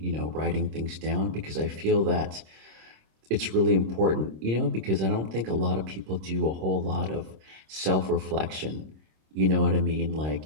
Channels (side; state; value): left; late; 26 ms